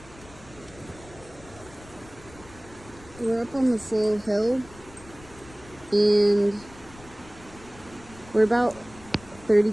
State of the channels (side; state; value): left; noise; rumble, 21 dB below the sound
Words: We're up on the full hill, and we're about 30